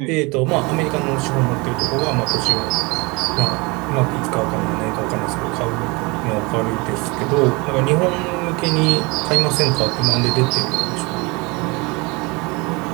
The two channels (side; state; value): left; quieter; 26.7 dB